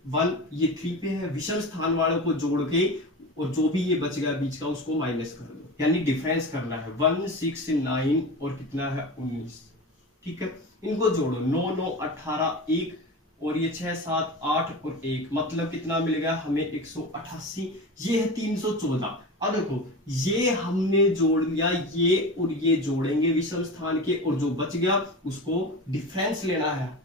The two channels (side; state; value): both; normal; correlation 0.29